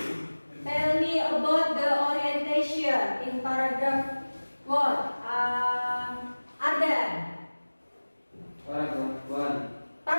tell me about the orientation in paragraph what? Ardan.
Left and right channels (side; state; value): both; inverted; correlation -1.00